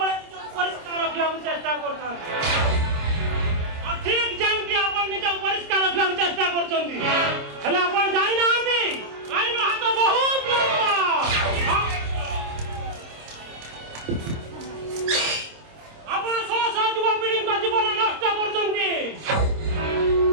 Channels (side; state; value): left; late; 26 ms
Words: ପରିଷ୍କାର ରଖିବାକୁ ଚେଷ୍ଟା କରୁଥାନ୍ତି। ଆଉ ଠିକ ଯେମିତି ଆପଣ ନିଜକୁ ପରିଷ୍କାର ରଖିବାକୁ ଚେଷ୍ଟା କରୁଛନ୍ତି, ହେଲେ ଆପଣ ଜାଣିନାହାନ୍ତି ଆଇନ ହାତ ବହୁତ ଲମ୍ବା। ଆପଣ ଶହ ଶହ ଯୁବପିଢ଼ିଙ୍କ ଜୀବନ ନଷ୍ଟ କରୁଛନ୍ତି।